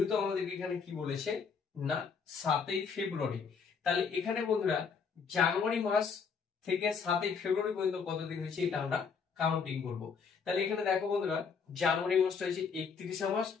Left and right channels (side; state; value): right; quieter; 5.8 dB